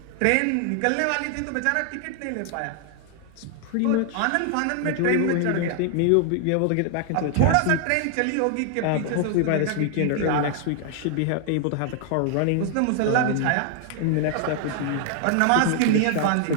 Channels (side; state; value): both; different; correlation 0.00